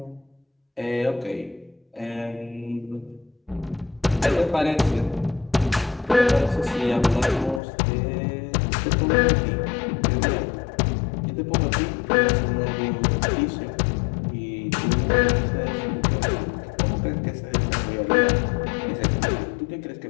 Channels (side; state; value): right; drops out; at 7.6 s